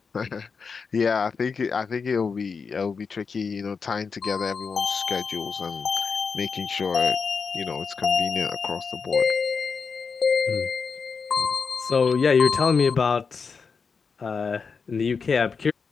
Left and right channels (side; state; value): right; quieter; 5.3 dB